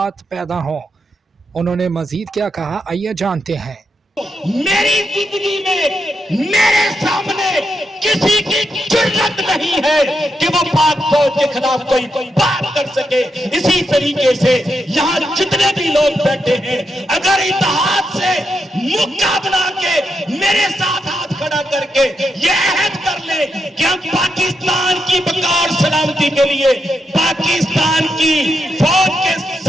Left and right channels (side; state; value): both; normal; correlation 0.83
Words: पैदा हों। उन्होंने मजीद क्या कहा, आइए जानते हैं। मेरी जिंदगी में मेरे सामने किसी की जुर्रत नहीं है कि वो पाक फौज के खिलाफ कोई बात कर सके। इसी तरीके से यहाँ जितने भी लोग बैठे हैं, अगर इत्तेहाद से मुक्का बना के मेरे साथ हाथ खड़ा करके ये अहद कर ले कि हम पाकिस्तान की बका और सलामती के लिए पाकिस्तान की फौज के